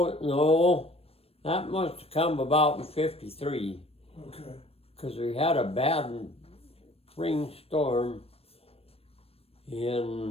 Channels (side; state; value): right; late; 0.28 ms